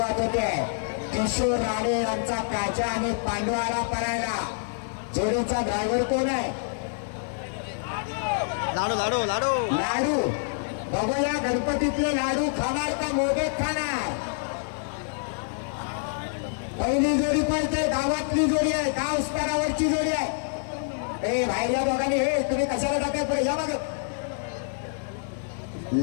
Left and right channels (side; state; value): right; silent; 60 dB below the other